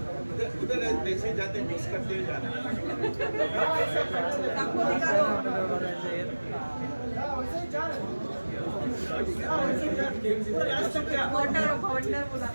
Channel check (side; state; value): both; inverted; correlation -1.00